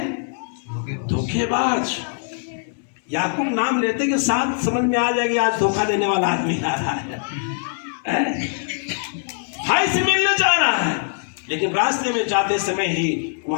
धोखेबाज। याकूब नाम लेते के साथ समझ में आ जाएगा आज धोखा देने वाला आदमी आ रहा है। भाई से मिलने जा रहा है, लेकिन रास्ते में जाते समय ही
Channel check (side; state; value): right; silent; 64 dB below the other